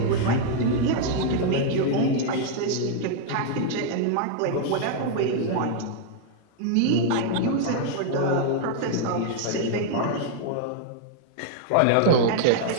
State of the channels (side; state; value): both; different; correlation 0.00